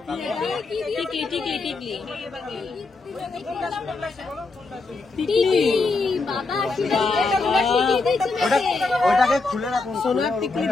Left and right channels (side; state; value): right; quieter; 3.7 dB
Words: ওটাকে খুলে রাখুন। সোনার টিকলি